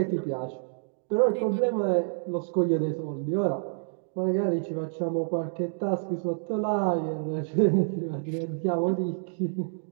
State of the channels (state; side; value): silent; left; digital silence